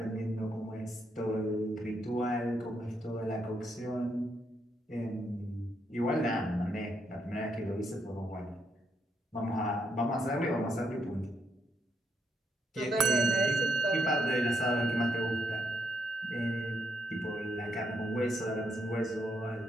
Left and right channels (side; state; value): both; normal; correlation 0.77